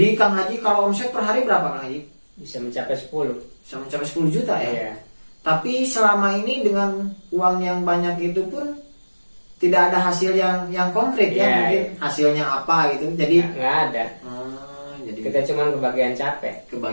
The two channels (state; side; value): inverted; both; correlation -1.00